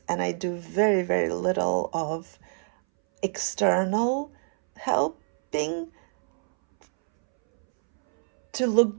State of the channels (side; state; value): left; silent; 61 dB below the other